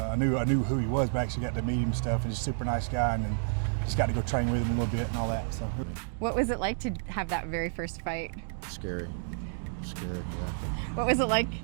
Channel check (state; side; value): silent; left; digital silence